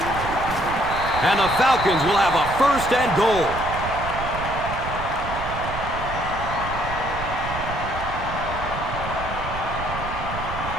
And the Falcons will have a first and goal.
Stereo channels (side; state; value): right; noise; rumble, 8 dB below the sound